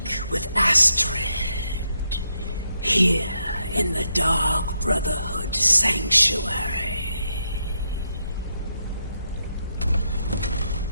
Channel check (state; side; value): inverted; both; correlation -0.81